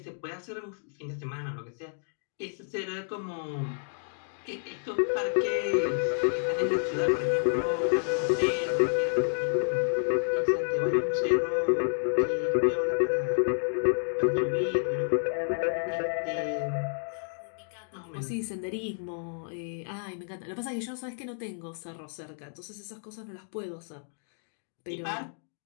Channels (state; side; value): silent; right; digital silence